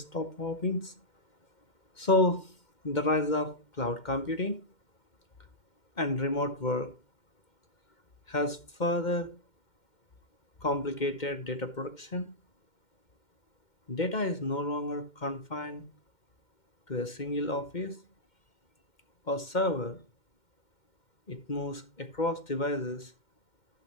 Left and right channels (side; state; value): right; late; 2.1 ms